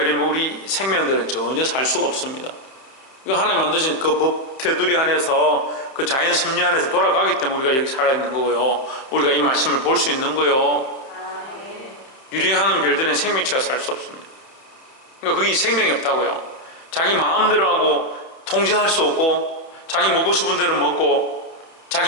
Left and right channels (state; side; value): late; right; 30 ms